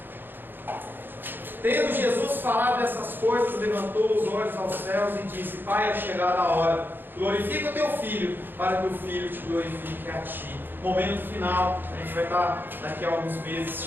Tendo Jesus falado essas coisas, levantou os olhos aos céus e disse: Pai, é chegada a hora, glorifica o teu Filho, para que o Filho te glorifique a ti. Momento final, a gente vai estar daqui a alguns meses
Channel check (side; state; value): left; late; 0.096 ms